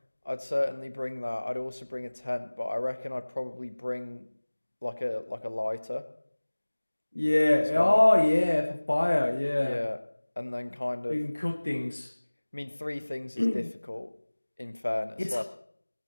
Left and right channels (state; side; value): inverted; both; correlation -1.00